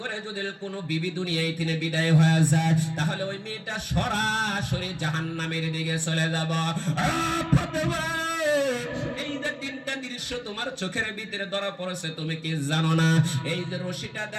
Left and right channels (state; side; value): identical; both; correlation 1.00